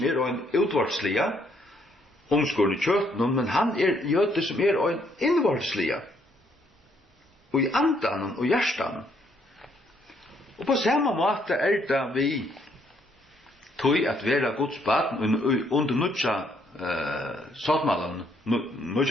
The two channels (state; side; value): normal; both; correlation 0.70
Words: en utvartslige, omskåren i kjøtten, men han jøde som en innvartslige. Og i andan og hjertan. Og på samme måte det vi tog at vera Guds barn under nødja såtmalen,